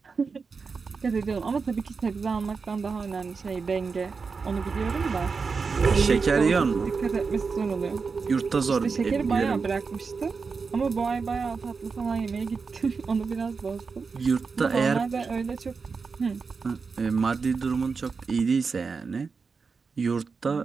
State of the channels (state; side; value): quieter; left; 5.0 dB